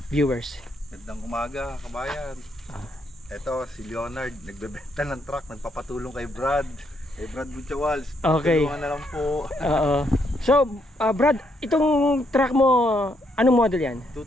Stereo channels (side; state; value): both; normal; correlation 0.75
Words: viewers. Magandang umaga, kabayan. Ito si Leonard, nagbebenta ng truck, nagpapatulong kay Brad. Kay Brad Buchawals. Okay. Tulungan na lang po. Oo. So, Brad, itong truck mo, anong model yan?